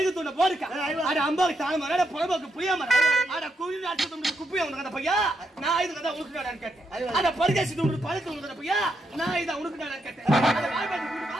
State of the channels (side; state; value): both; normal; correlation 0.80